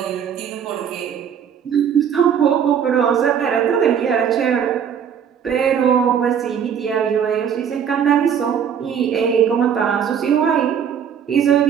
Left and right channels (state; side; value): quieter; left; 8.1 dB